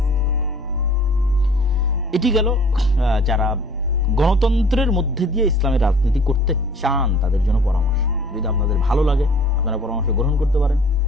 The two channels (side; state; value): both; normal; correlation 0.51